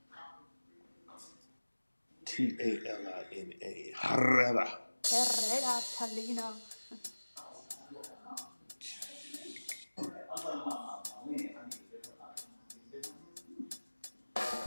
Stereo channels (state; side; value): inverted; both; correlation -1.00